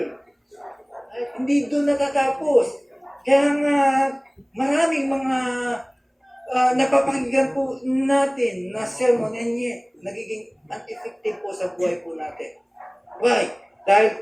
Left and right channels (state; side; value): identical; both; correlation 1.00